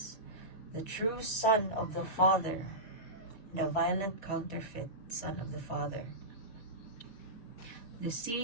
the true son of the Father, and a violent counterfeit son of the Father. The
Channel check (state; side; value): late; right; 4.6 ms